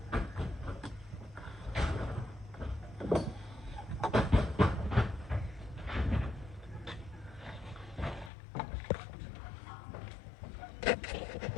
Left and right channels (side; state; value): right; drops out; at 8.3 s